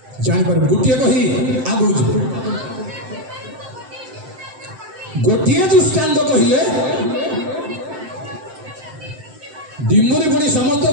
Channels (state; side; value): late; left; 7.8 ms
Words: जानी पारिबो गोटे कही आगु गोटे दृष्टांत कहले डिमुरी पड़ी समस्त